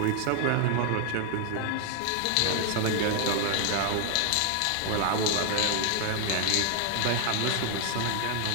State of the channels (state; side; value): different; both; correlation 0.00